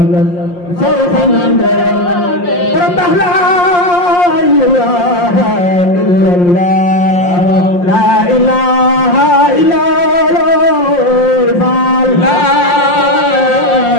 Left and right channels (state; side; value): late; right; 5.7 ms